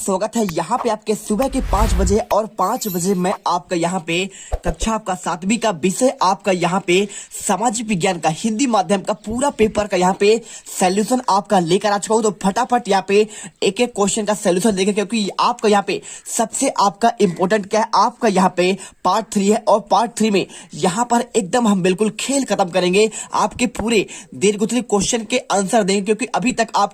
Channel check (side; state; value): both; identical; correlation 1.00